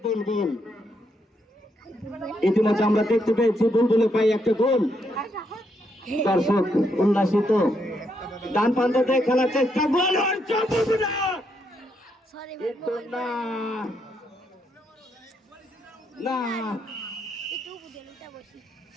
বুলবুল ইতিমধ্যে আমরা দেখতে পেয়েছি বুলবুলে পাই একটা গোল, দর্শক উল্লাসিত, ডান প্রান্তে খেলার চেষ্টা, গোল না,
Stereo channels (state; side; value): normal; both; correlation 0.77